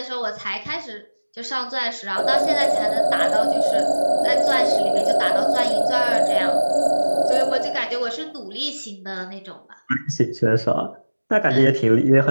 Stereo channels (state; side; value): inverted; both; correlation -1.00